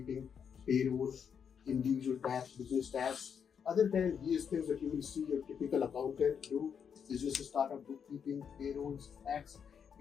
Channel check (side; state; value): right; quieter; 7.2 dB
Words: payroll, individual tax, business tax. Other than these things that you will see your typical accountant do, business startup, bookkeeping, payrolls, tax,